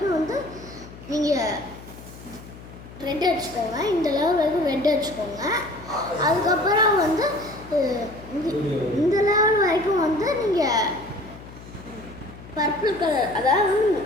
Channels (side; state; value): left; noise; hum, 17 dB below the sound